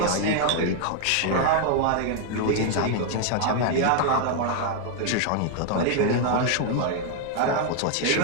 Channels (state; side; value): different; both; correlation 0.01